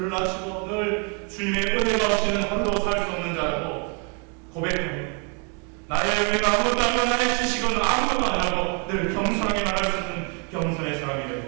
낮추고 늘 주님의 은혜가 없이는 하루도 살 수 없는 자라고 고백합니다. 나의 은혜가 아무것도 아니고 나의 지식은 아무것도 아니라고 늘 겸손하게 말할 수 있는 겸손의 사람이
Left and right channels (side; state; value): left; quieter; 37.8 dB